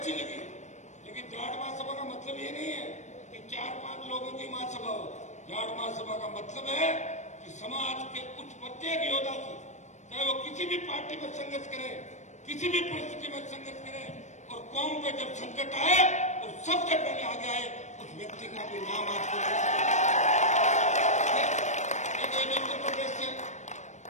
लगी, लेकिन जाट महासभा का मतलब ये नहीं है कि 4-5 लोगों की महासभा हो। जाट महासभा का मतलब है कि समाज के कुछ प्रत्येक योद्धा की, चाहे वो किसी भी पार्टी में संघर्ष करे, किसी भी परिस्थिति में संघर्ष करे, और कौम पे जब संकट आए तो सबसे पहले आगे आए उस व्यक्ति का भी नाम आपको उत्तर प्रदेश से,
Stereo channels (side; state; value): right; late; 0.34 ms